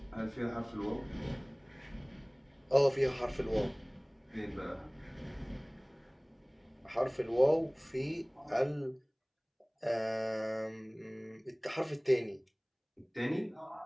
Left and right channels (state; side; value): identical; both; correlation 1.00